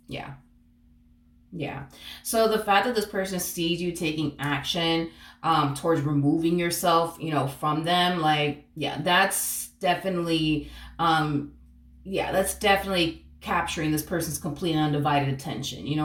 Yeah. Yeah. So the fact that this person sees you taking action towards removing yourself, from them, like, that's definitely, that's definitely capturing this person's complete and undivided attention. You know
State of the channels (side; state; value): both; identical; correlation 1.00